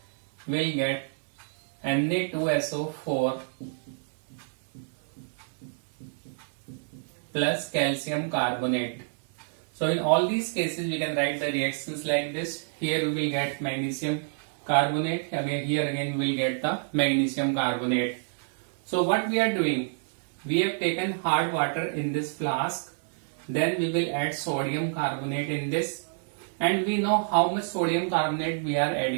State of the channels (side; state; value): left; silent; digital silence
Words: will get Na2SO4 plus calcium carbonate. So in all these cases we can write the reactions like this. Here we will get magnesium carbonate, again here again we will get the magnesium carbonate. So what we are doing, we have taken hard water in this flask, then we will add sodium carbonate in this, and we know how much sodium carbonate we are